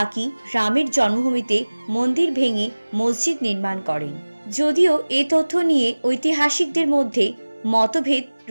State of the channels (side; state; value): both; inverted; correlation -1.00